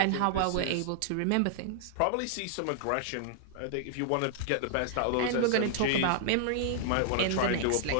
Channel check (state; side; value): different; both; correlation -0.01